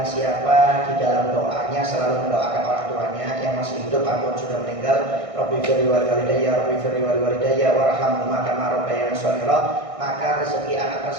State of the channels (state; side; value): late; left; 1.6 ms